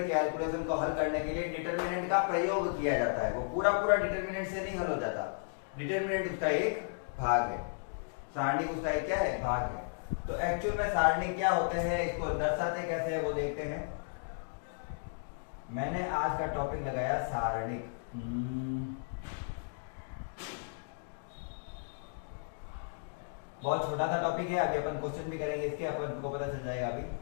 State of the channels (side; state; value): right; silent; digital silence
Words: कैलकुलेशन को हल करने के लिए डिटर्मिनेंट का प्रयोग किया जाता है। वो पूरा पूरा डिटर्मिनेंट से नहीं हल हो जाता, डिटर्मिनेंट उसका एक भाग है, सारणिक उसका एक क्या है, भाग है। तो एक्चुअल में सारणिक क्या होते हैं, इसको दर्शाते कैसे है वो देखते हैं। मैंने आज का टॉपिक लगाया सारणिक। बहुत छोटा सा टॉपिक है, अभी अपन क्वेश्चन भी करेंगे इसके, अपन को पता चल जाएगा। अभी